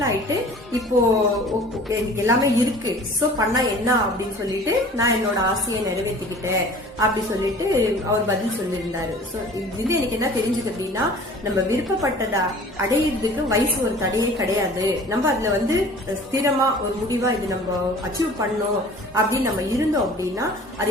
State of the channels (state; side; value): normal; both; correlation 0.46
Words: ஆயிட்டு இப்போ எனக்கு எல்லாமே இருக்கு, சோ பண்ணா என்ன அப்படின்னு சொல்லிட்டு நான் என்னோட ஆசையை நிறைவேற்றிக்கிட்டேன் அப்படி சொல்லிட்டு அவர் பதில் சொல்லியிருந்தாரு. சோ இது எனக்கு என்ன தெரிஞ்சது அப்படின்னா, நம்ம விருப்பப்பட்டதை அடையிறதுக்கு வயசு ஒரு தடையே கிடையாது. நம்ம அதுல ஸ்திரமா ஒரு முடிவா இது நம்ம அச்சீவ் பண்ணோம் அப்படின்னு நம்ம இருந்தோம் அப்படின்னா அது